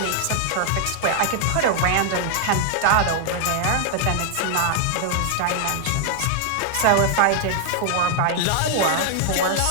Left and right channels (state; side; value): different; both; correlation 0.00